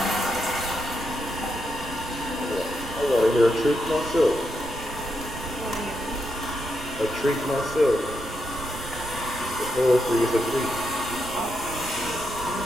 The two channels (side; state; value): right; noise; rumble, 13 dB below the sound